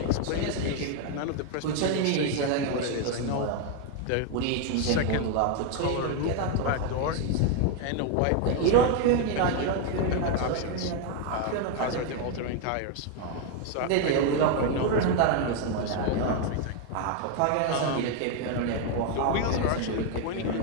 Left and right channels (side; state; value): both; different; correlation 0.01